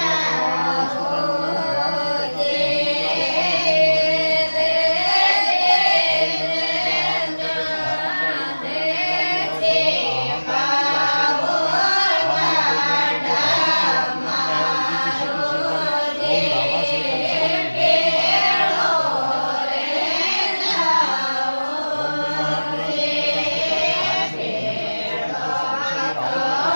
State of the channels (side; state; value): both; inverted; correlation -1.00